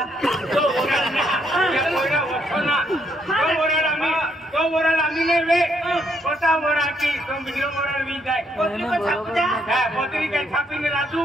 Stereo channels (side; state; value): both; normal; correlation 0.73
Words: तो ओरड आम्ही ने वे पता ओरा की तो वीडियो ओरड वी जाय पोतरी को छाप द्या हां पोतरी काय छापीने राजू